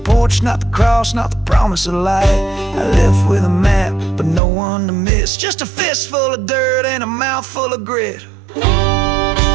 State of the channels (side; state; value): left; drops out; at 4.4 s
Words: not the cross, not the promise of light. I left with a map, but no one to miss. Just a fist full of dirt and a mouth full of grit. And